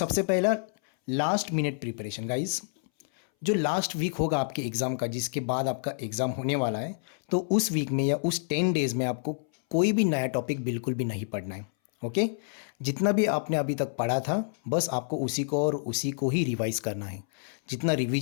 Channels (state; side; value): silent; right; 59 dB below the other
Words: पहला, लास्ट मिनट प्रिपरेशन गाइज। जो लास्ट वीक होगा आपके एग्ज़ाम का, जिसके बाद आपका एग्ज़ाम होने वाला है, तो उस वीक में या उस 10 डेज़ में आपको कोई भी नया टॉपिक बिल्कुल भी नहीं पढ़ना है। ओके। जितना भी आपने अभी तक पढ़ा था बस आपको उसी को और उसी को ही रिवाइज करना है। जितना